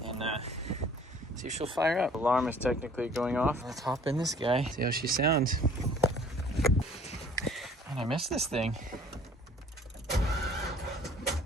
and see if she'll fire up. Alarm is technically going off. Let's hop in this guy, see how she sounds. Man, I missed this thing.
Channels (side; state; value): both; normal; correlation 0.54